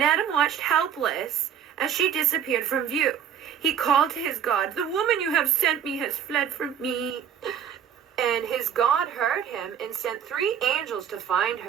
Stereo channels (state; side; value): quieter; left; 8.6 dB